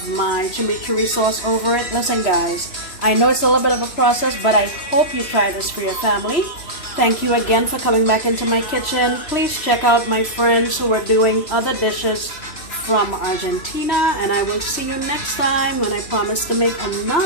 my chimichurri sauce over it. Listen guys, I know it's a little bit of a process, but I hope you try this for your family. Thank you again for coming back into my kitchen. Please check out my friends who are doing other dishes from Argentina, and I will see you next time when I promise to make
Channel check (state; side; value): late; right; 3.1 ms